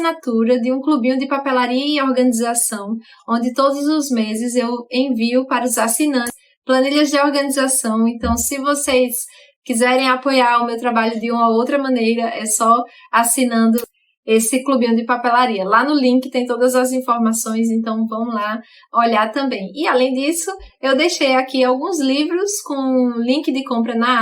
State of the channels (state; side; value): identical; both; correlation 1.00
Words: de um clubinho de papelaria e organização, onde todos os meses eu envio para os assinantes planilhas de organização. Então, se vocês quiserem apoiar o meu trabalho de uma ou outra maneira, é só assinando esse clubinho de papelaria. Lá no link tem todas as informações, então vão lá olhar também. E além disso, eu deixei aqui alguns livros com link de compra